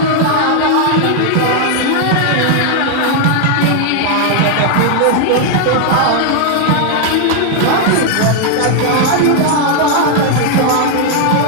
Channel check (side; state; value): both; different; correlation 0.00